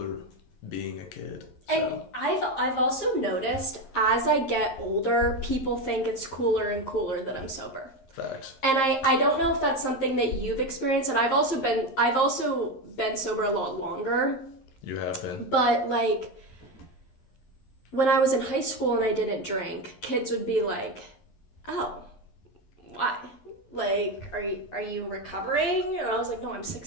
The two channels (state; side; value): late; right; 11 ms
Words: being a kid. And I've also noticed, as I get older, people think it's cooler and cooler that I'm sober. Facts. And I don't know if that's something that you've experienced, and I've also been sober a lot longer. You have been. But, like, when I was in high school and I didn't drink, kids would be like, oh, why? Like, are you recovering? And I was like, no, I'm